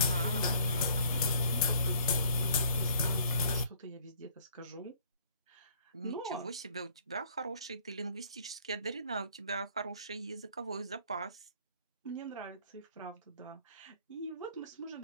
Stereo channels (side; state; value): both; inverted; correlation -0.57